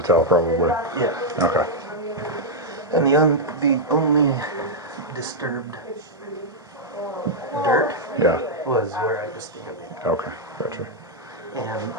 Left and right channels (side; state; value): both; normal; correlation -0.05